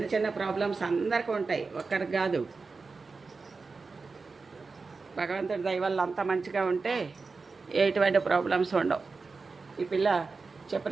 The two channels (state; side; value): quieter; left; 4.3 dB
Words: చిన్న ప్రాబ్లమ్స్ అందరికీ ఉంటాయి, ఒక్కరికి కాదు. భగవంతుడి దయ వల్ల అంత మంచిగా ఉంటే ఎటువంటి ప్రాబ్లమ్స్ ఉండవు. ఈ పిల్ల